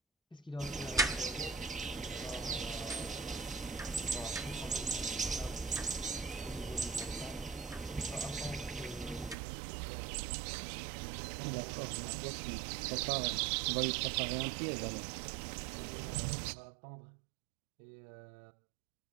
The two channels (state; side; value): drops out; left; at 9.3 s